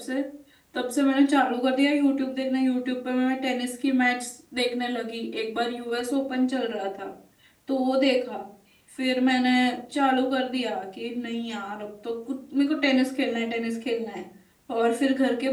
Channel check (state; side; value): identical; both; correlation 1.00